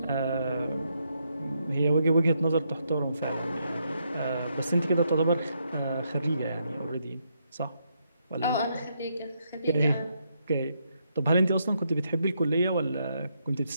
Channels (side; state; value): both; inverted; correlation -0.78